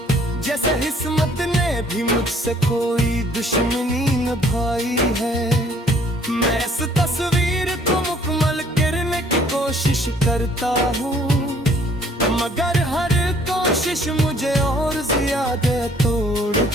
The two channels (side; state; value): both; normal; correlation 0.60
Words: जैसे किस्मत ने भी मुझसे कोई दुश्मनी निभाई है। मैं इस तस्वीर को मुकम्मल करने की कोशिश करता हूँ, मगर हर कोशिश मुझे और ज्यादा तोड़